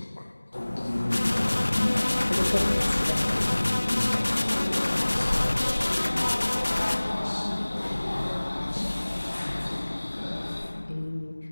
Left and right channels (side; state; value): both; inverted; correlation -1.00